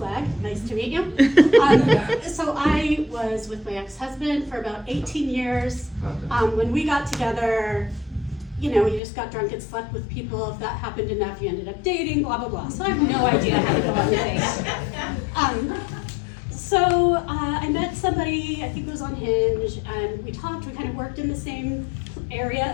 Nice to meet you. So I was with my ex-husband for about 18 years. When we got together, you know, you just got drunk and slept with people. If that happened enough, you ended up dating, blah, blah, blah. So I have no idea how to go on dates. So I met somebody, I think it was on Hinge, and we talked. We kind of worked in the same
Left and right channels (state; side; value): drops out; right; at 9.0 s